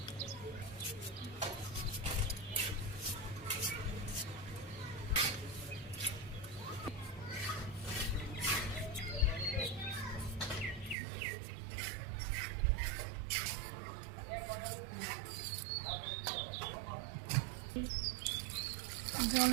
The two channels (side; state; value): left; drops out; at 11.0 s